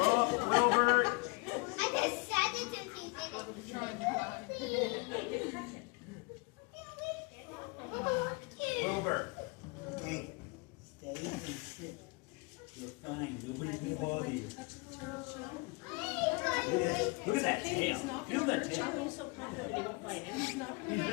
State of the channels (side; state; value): right; quieter; 29.3 dB